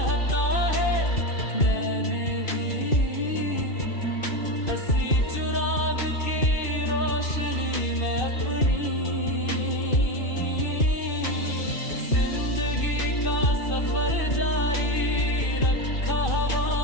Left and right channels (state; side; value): late; right; 2.6 ms